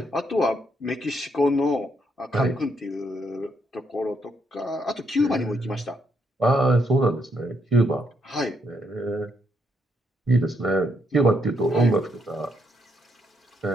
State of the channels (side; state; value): both; normal; correlation 0.76